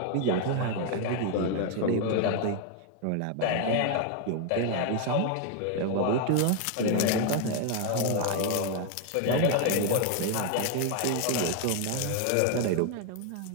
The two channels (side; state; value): both; different; correlation 0.01